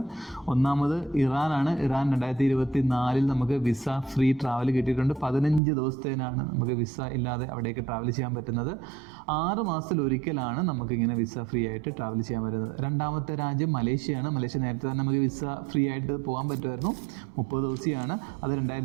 ഒന്നാമത് ഇറാനാണ്. ഇറാൻ 2024 നമുക്ക് വിസ ഫ്രീ ട്രാവൽ കിട്ടിയിട്ടുണ്ട്. 15 ദിവസത്തേനാണ് നമുക്ക് വിസ ഇല്ലാതെ അവിടേക്ക് ട്രാവൽ ചെയ്യാൻ പറ്റുന്നത്. 6 മാസത്തിൽ ഒരിക്കലാണ് നമുക്കിങ്ങനെ വിസ ഫ്രീ ആയിട്ട് ട്രാവൽ ചെയ്യാൻ പറ്റുന്നത്. രണ്ടാമത്തെ രാജ്യം മലേഷ്യയാണ്. മലേഷ്യ നേരത്തെ തന്നെ നമുക്ക് വിസ ഫ്രീ ആയിട്ട് പോകാൻ പറ്റുമായിരുന്നു. 30 ദിവസമാണ്. അത്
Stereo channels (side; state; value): left; drops out; at 5.6 s